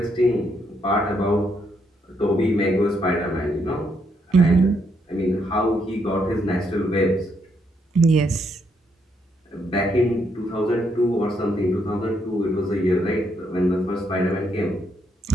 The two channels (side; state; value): both; normal; correlation 0.75